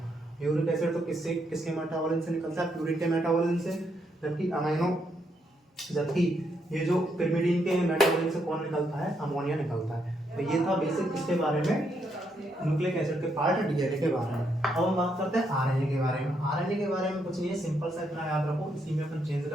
यूरिक एसिड तो किसके मेटाबॉलिज्म से निकलता है? प्यूरिन के मेटाबॉलिज्म से। जबकि ये जो पिरिमिडिन के मेटाबॉलिज्म से कौन निकलता है? अमोनिया निकलता है। तो ये था बेसिक किसके बारे में? न्यूक्लिक एसिड के पार्ट, डीएनए के बारे में। अब हम बात करते हैं आरएनए के बारे में। आरएनए के बारे में कुछ नहीं है, सिंपल सा इतना याद रखो। इसी में अपन चेंज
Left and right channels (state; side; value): normal; both; correlation 0.77